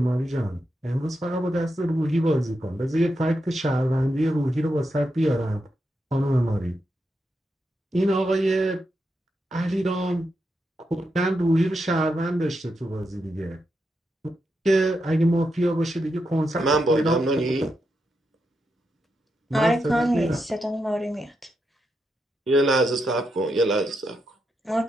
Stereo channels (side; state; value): both; normal; correlation 0.85